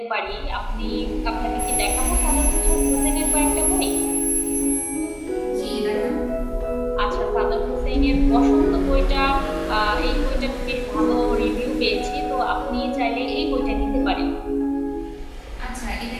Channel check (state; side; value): identical; both; correlation 1.00